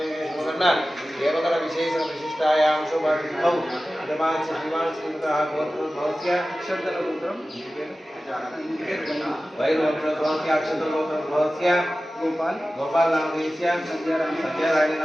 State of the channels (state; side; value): normal; both; correlation 0.95